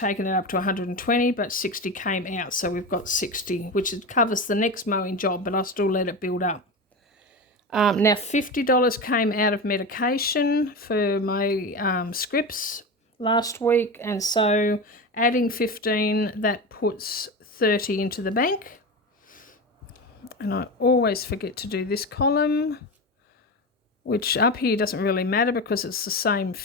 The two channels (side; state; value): both; normal; correlation 0.23